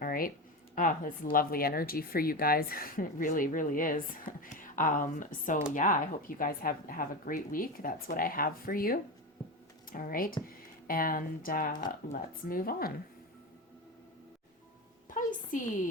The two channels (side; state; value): both; normal; correlation 0.20